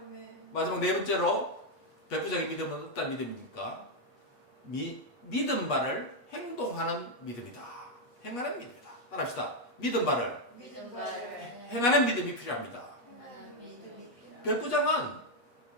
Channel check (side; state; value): right; late; 8.3 ms